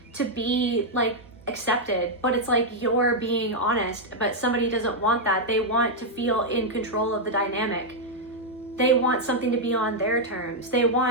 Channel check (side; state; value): both; normal; correlation -0.03